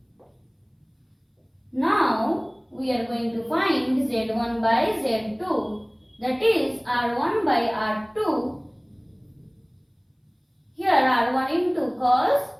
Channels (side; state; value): both; identical; correlation 1.00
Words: Now we are going to find z1 by z2. That is r1 by r2. Here r1 into cos